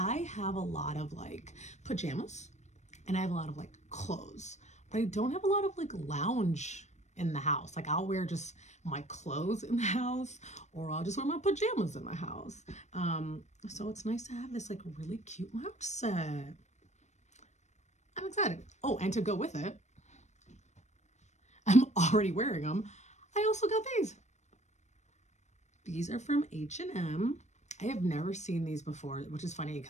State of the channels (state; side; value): late; right; 0.34 ms